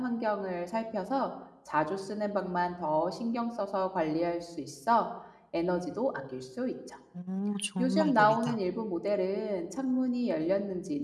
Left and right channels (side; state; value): both; identical; correlation 1.00